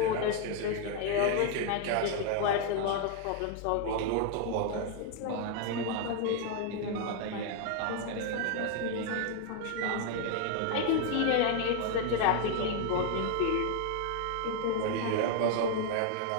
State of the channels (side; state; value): both; different; correlation 0.00